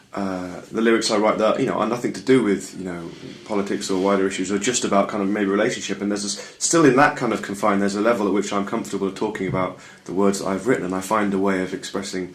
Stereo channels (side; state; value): both; identical; correlation 1.00